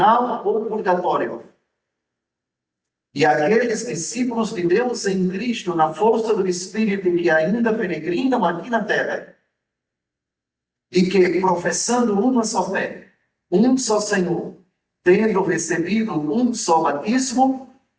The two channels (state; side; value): identical; both; correlation 1.00